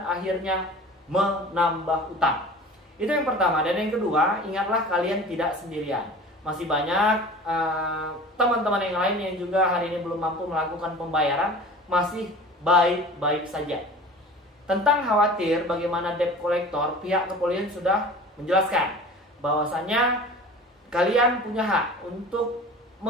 akhirnya menambah utang. Itu yang pertama. Dan yang kedua, ingatlah kalian tidak sendirian. Masih banyak teman-teman yang lain yang juga hari ini belum mampu melakukan pembayaran, masih baik-baik saja. Tentang khawatir bagaimana debt collector, pihak kepolisian sudah menjelaskan bahwasanya kalian punya hak untuk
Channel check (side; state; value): both; normal; correlation 0.40